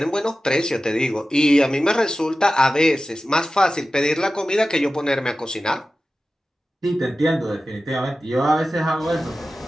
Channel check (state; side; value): normal; both; correlation 0.94